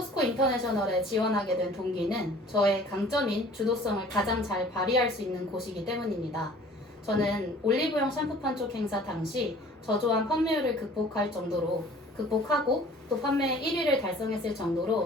인터내셔널에 지원하게 된 동기는 저의 강점인 주도성을 가장 잘 발휘할 수 있는 곳이기 때문입니다. 저는 올리브영 샴푸판 쪽 행사 당시 저조한 판매율을 극복하고 또 판매 1위를 달성했을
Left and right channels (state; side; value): normal; both; correlation 0.50